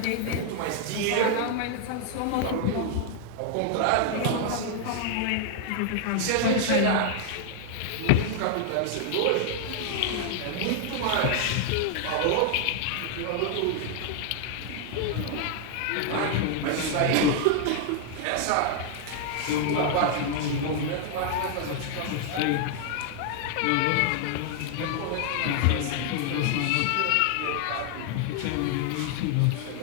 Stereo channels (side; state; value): both; different; correlation 0.00